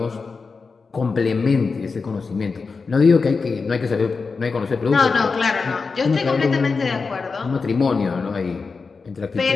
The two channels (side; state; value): right; quieter; 4.6 dB